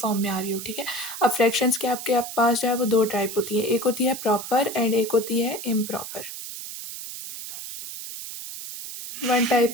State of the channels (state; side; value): noise; right; hiss, 9 dB below the sound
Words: में आ रही हो, ठीक है। अब फ्रैक्शंस के आपके पास जो है वो 2 टाइप होती है, एक होती है प्रॉपर एंड एक होती है improper. One type